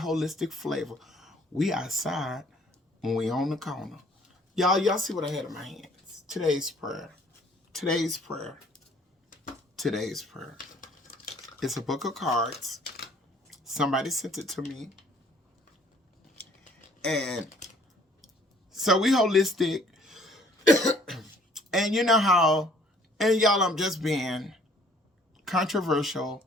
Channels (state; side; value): normal; both; correlation 0.58